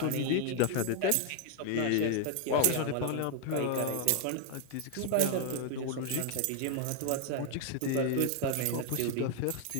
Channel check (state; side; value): different; both; correlation 0.00